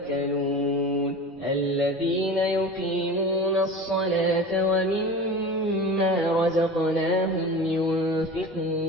الذين يقيمون الصلاة ومما رزقناهم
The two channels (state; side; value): normal; both; correlation 0.34